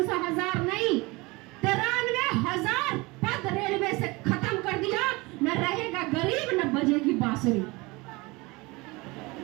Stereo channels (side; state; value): left; quieter; 24.1 dB